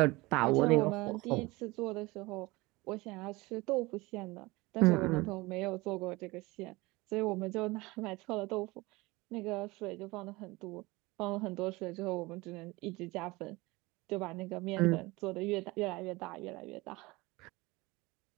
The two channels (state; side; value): quieter; left; 22.4 dB